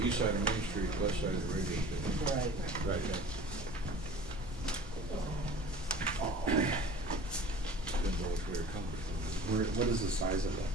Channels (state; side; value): normal; both; correlation 0.42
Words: east side of Main Street, west side of the radio station. Right. Right. Been What is the size of that